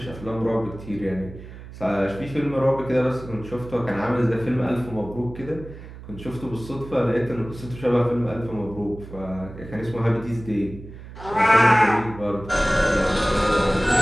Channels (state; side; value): noise; right; hum, 15 dB below the sound